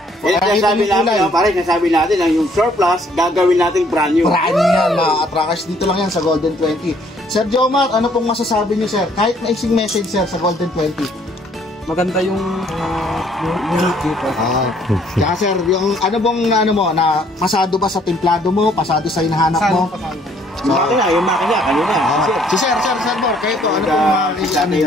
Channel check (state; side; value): normal; both; correlation 0.63